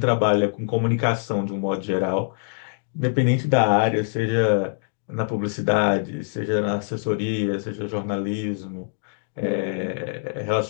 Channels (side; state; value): right; silent; digital silence